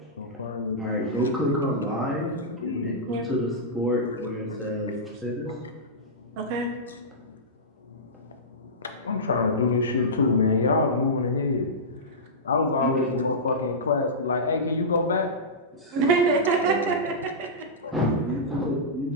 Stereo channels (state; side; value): normal; both; correlation -0.15